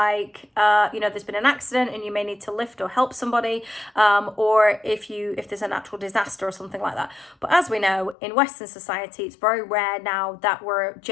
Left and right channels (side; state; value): right; drops out; at 8.2 s